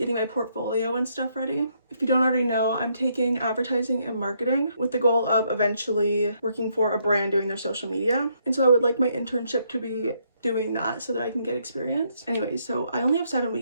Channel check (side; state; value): both; inverted; correlation -0.73